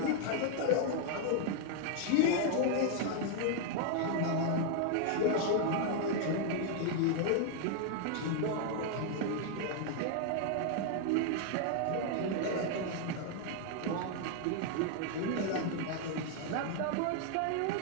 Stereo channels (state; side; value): different; both; correlation 0.00